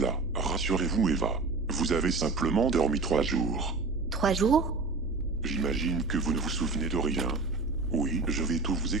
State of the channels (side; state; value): left; quieter; 3.9 dB